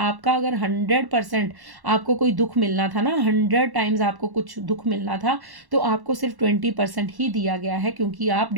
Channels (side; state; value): left; late; 1.1 ms